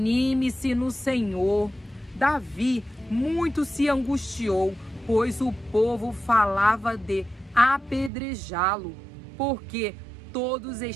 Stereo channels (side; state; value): left; drops out; at 8.1 s